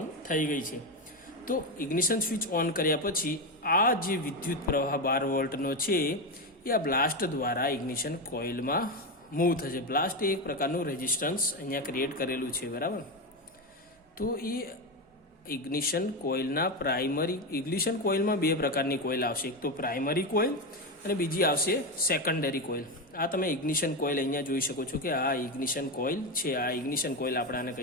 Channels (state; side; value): normal; both; correlation 0.13